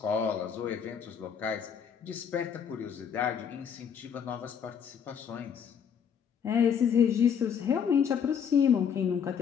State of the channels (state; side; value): quieter; right; 7.5 dB